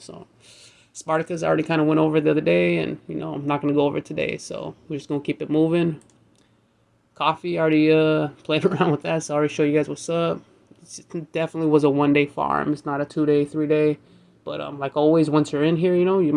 Sparticus I already kind of went over the other day, and, you know, I'm not going to go over it today. So we're just going to keep it moving. Coffe, I already played around with that, so I already show you guys what's up. It definitely was a 1 day farm. It's not a 2 day, 3 day. But like always, once you're in here, you know, you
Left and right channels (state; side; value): identical; both; correlation 1.00